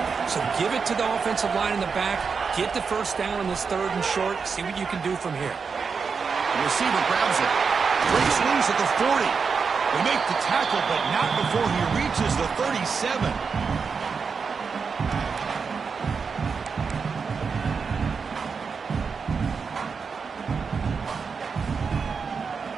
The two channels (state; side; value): quieter; left; 5.5 dB